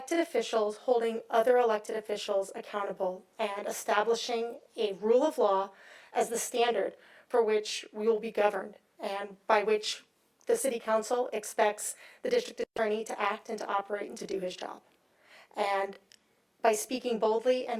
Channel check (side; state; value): both; identical; correlation 1.00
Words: officials holding other elected officials accountable and establishing a rule of law as the standard for which we will be governed, and by which the city council expects the district attorney to act and to operate and to do his job. And by speaking boldly